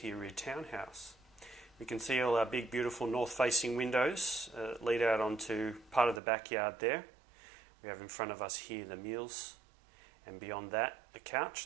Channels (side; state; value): left; drops out; at 6.2 s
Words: rear townhouse. We can see all our big, beautiful north-facing windows lead out onto part of the backyard there. We have in front of us here the meals, and beyond that, the couch